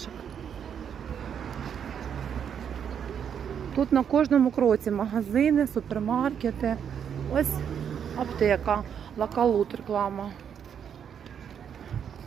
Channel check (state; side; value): quieter; left; 8.1 dB